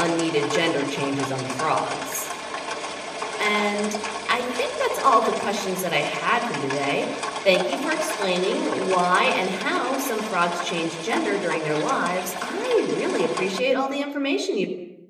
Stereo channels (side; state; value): both; identical; correlation 1.00